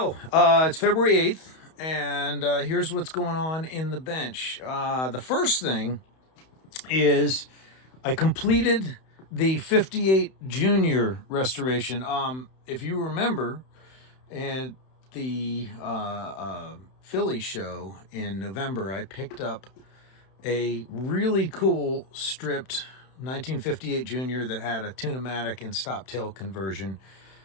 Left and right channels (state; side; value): late; right; 31 ms